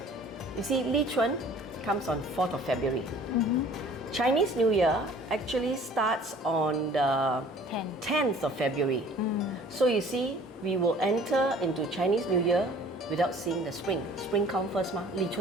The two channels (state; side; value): normal; both; correlation 0.50